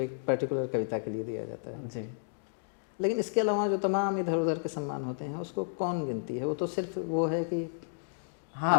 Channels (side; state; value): right; silent; digital silence